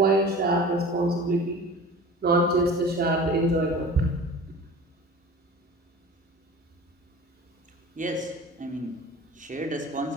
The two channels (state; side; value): normal; both; correlation 0.39